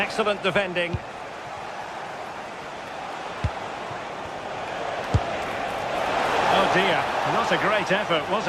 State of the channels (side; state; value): both; identical; correlation 1.00